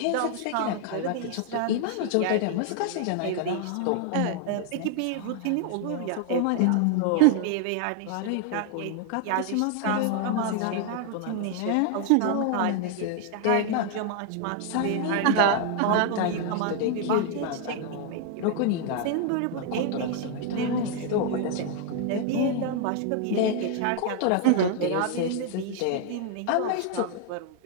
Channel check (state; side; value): different; both; correlation 0.00